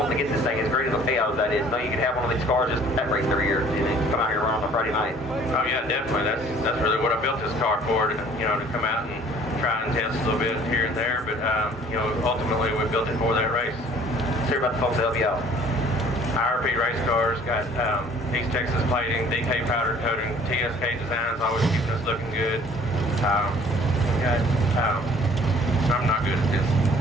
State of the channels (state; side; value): normal; both; correlation 0.54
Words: to get this thing as great as a payout as that is. No, you can have one of these cars just that race every year, and then come out here and run on a Friday night. Oh yeah, definitely. That's really what I built this car for, you know, to come out and try and test a little bit here and there, but, you know, ultimately we built it for that race. Let's hear about the folks that help you out. IRP race cars, got East Texas plating, DK powder coating, TSK designs, always keeping us looking good. I'm not good at this.